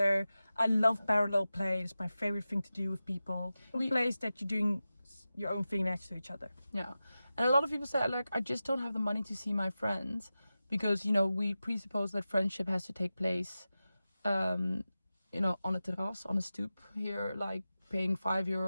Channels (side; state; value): both; inverted; correlation -0.94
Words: I love parallel play. It's my favorite thing to do with people. Plays that you're doing your own thing next to each other. Yeah. And a lot of people say, like, I just don't have the money to see my friends because, you know, we presuppose that friendship has to take place, you know, on a terrace, on a stoop here, like paying